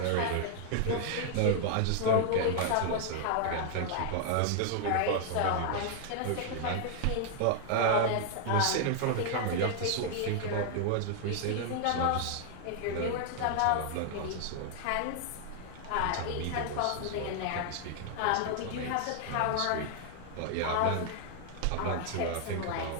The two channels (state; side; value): different; both; correlation 0.00